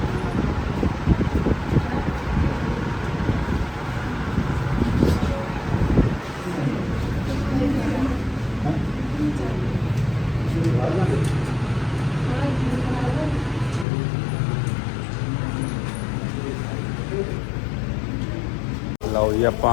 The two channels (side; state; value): right; drops out; at 13.9 s